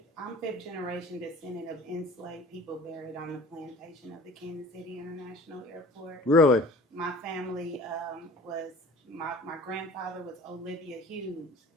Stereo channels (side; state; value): both; normal; correlation 0.45